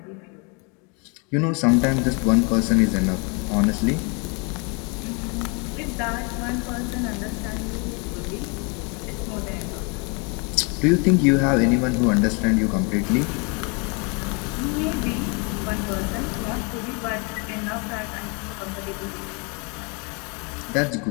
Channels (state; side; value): quieter; right; 33.0 dB